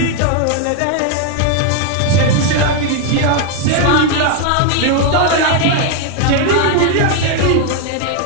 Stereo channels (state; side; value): different; both; correlation 0.01